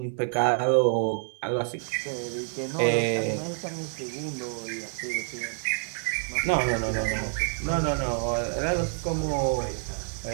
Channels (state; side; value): silent; left; 56 dB below the other